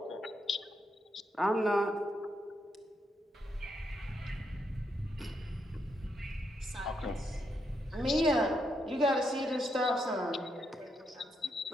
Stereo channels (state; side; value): normal; both; correlation 0.80